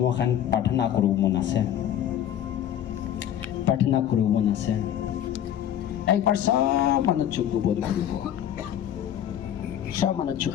এখন প্ৰাৰ্থনা কৰিব মন আছে একবাৰ সব মানুহ চুপ বন্ধ কৰিব সব মানুহ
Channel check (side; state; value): right; quieter; 10.6 dB